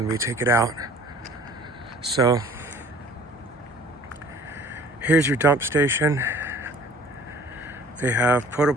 we take it out. So here's your dump station. They have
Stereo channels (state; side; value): normal; both; correlation 0.50